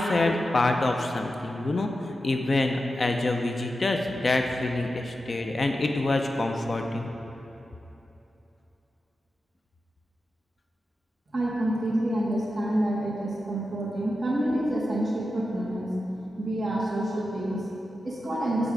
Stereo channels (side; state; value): both; normal; correlation 0.90